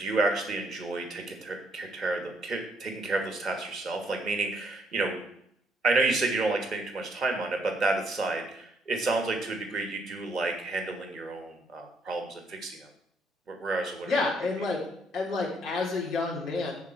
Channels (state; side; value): normal; both; correlation 0.70